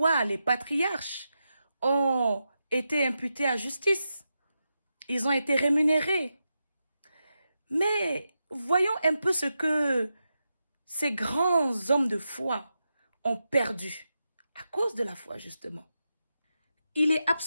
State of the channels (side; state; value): both; inverted; correlation -0.88